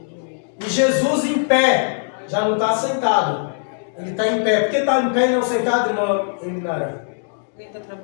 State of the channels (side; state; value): right; silent; digital silence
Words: e Jesus em pé. Já não está sentado, ele está em pé. Por que está em pé e não sentado, irmão Eminara? Ele está